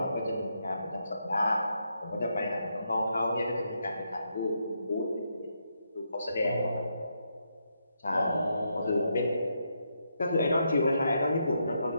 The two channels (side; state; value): both; inverted; correlation -0.80